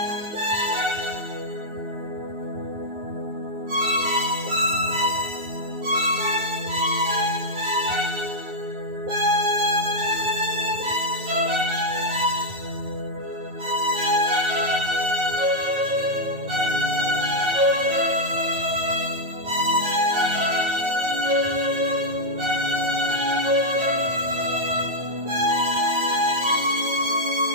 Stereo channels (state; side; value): late; left; 9.4 ms